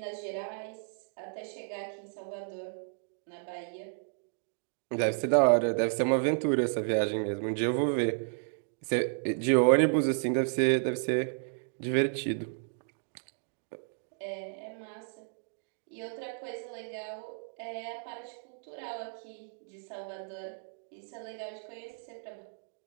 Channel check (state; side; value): silent; left; digital silence